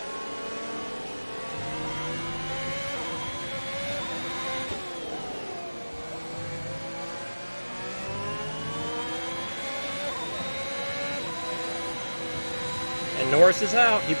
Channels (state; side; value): inverted; both; correlation -1.00